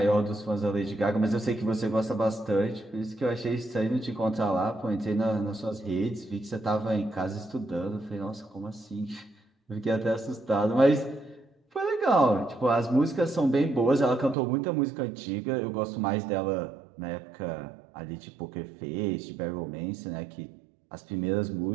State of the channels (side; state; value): left; drops out; at 14.4 s